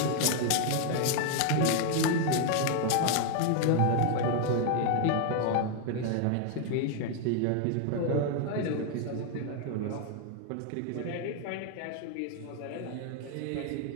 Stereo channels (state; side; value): different; both; correlation 0.00